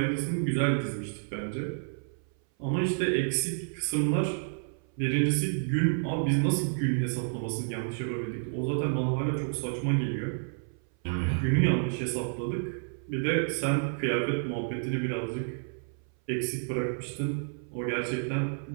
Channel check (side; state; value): left; silent; 58 dB below the other